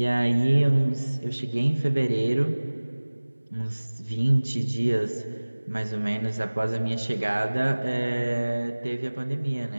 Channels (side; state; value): both; inverted; correlation -1.00